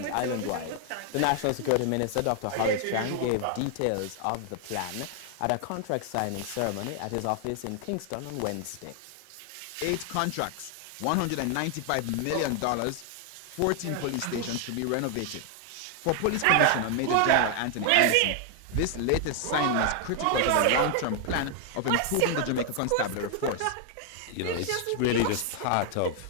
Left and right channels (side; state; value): both; different; correlation 0.00